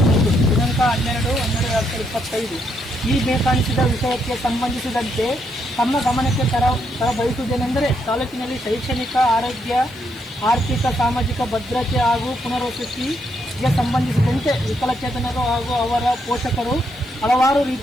12/12/2025. ಈ ಬೇಕಾಣಿಸಿದ ವಿಷಯಕ್ಕೆ ಸಂಬಂಧಿಸಿದಂತೆ ತಮ್ಮ ಗಮನಕ್ಕೆ ತರಬಯಸುವುದೇನೆಂದರೆ, ತಾಲೂಕಿನಲ್ಲಿ ಶೈಕ್ಷಣಿಕ, ಆರೋಗ್ಯ, ಆರ್ಥಿಕ, ಸಾಮಾಜಿಕ ಭದ್ರತೆ ಹಾಗೂ ಪುನರ್ವಸತಿಗೆ ಸಂಬಂಧಿಸಿದಂತೆ ವಿಕಲಚೇತನರು ಹಾಗೂ ಅವರ ಪೋಷಕರು ಹಲವಾರು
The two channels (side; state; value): left; noise; hiss, 28 dB below the sound